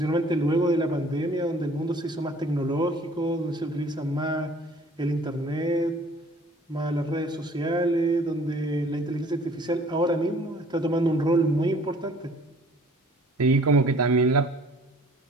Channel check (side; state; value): both; normal; correlation 0.53